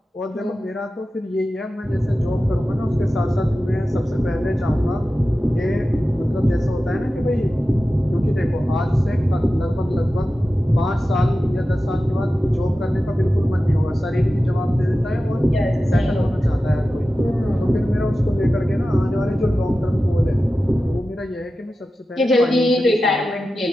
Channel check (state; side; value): normal; both; correlation 0.94